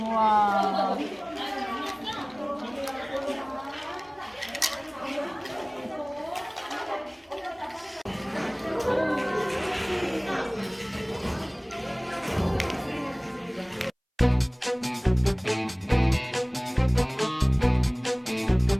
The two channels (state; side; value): identical; both; correlation 1.00